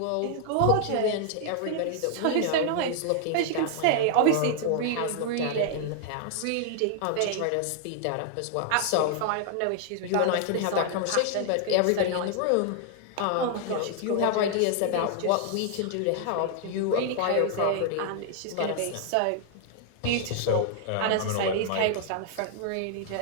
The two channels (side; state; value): both; different; correlation 0.00